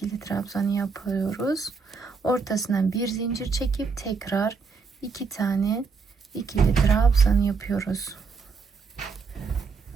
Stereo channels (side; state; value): left; quieter; 4.9 dB